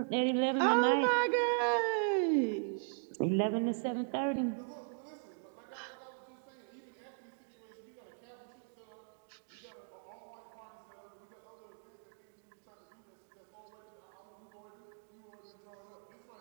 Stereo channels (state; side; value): silent; left; digital silence